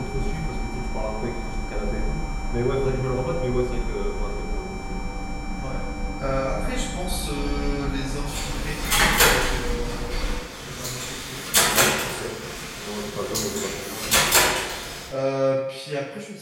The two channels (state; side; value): identical; both; correlation 1.00